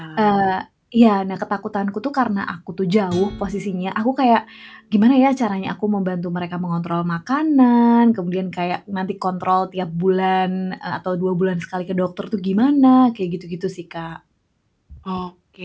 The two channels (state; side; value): identical; both; correlation 1.00